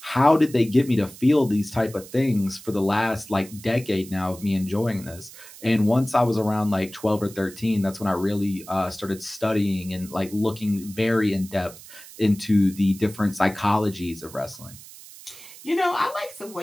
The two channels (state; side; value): noise; right; hiss, 18 dB below the sound